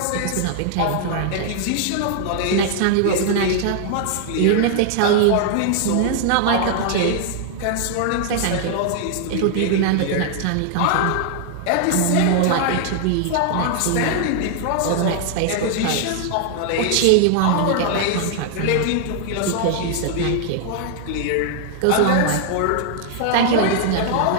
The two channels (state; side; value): different; both; correlation 0.00